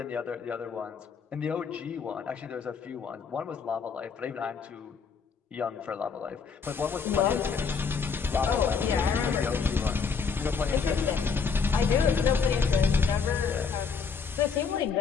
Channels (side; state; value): right; quieter; 5.7 dB